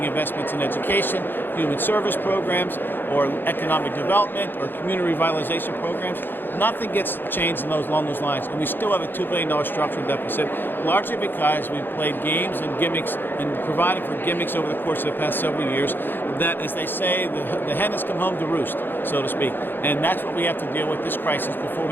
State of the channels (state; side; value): late; right; 0.097 ms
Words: investments in education, human service programs, or economic development, or community revitalization programs. Nothing gets changed along those lines, and we still have a $2 billion structural deficit, largely because we've played games and gimmicks and provided for gimmicks over the course of the past several years that, as they say, the hen has come home to roost, so to speak. And that's what we have to deal with, this crisis, before